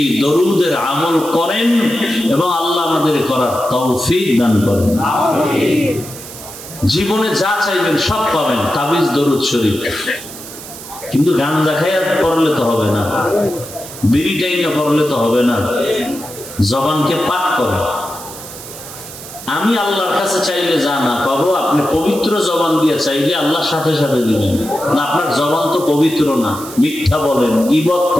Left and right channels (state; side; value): noise; right; hiss, 14 dB below the sound